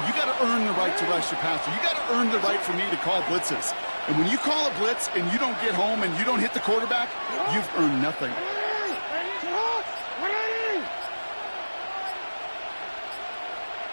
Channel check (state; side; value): inverted; both; correlation -1.00